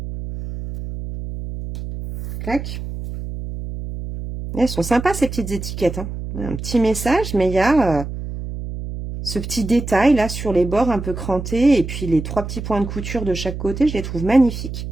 clac, Elles sont sympas ces petites étiquettes, hein. Un petit message, mais il y a ce petit détail là sur les bords un peu crantés. Et puis les 3 petits points de couture de chaque côté, je les trouve magnifiques.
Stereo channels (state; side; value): noise; right; hum, 7 dB below the sound